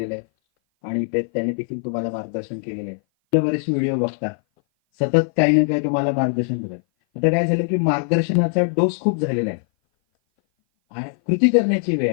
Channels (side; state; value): right; silent; 57 dB below the other